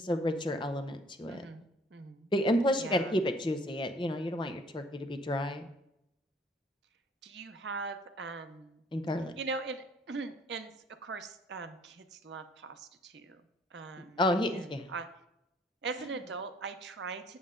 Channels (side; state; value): both; normal; correlation 0.59